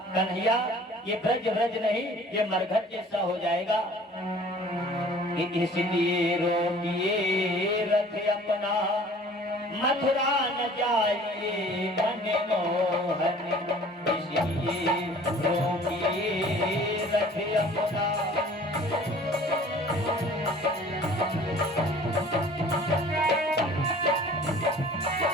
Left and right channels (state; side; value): normal; both; correlation 0.50